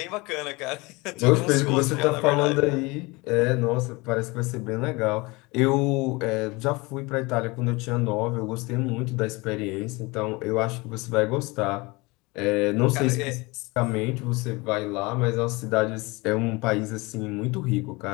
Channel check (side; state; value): right; quieter; 24.7 dB